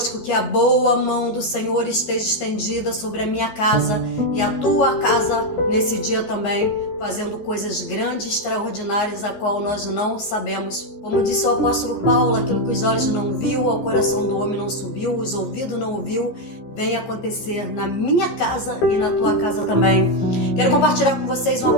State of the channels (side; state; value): right; late; 14 ms